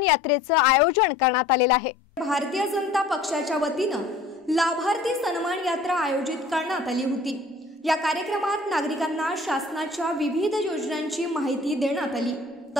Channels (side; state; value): right; quieter; 3.1 dB